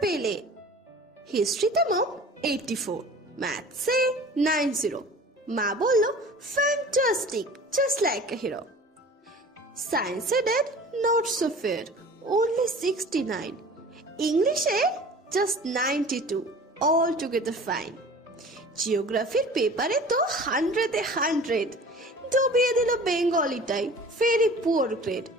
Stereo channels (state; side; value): normal; both; correlation 0.43